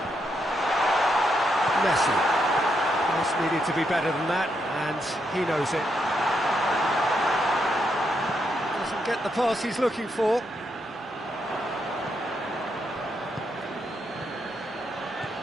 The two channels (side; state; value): both; normal; correlation 0.80